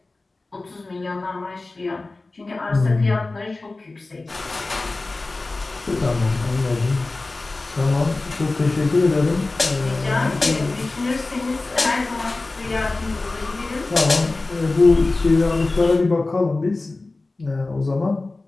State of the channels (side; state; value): right; quieter; 3.3 dB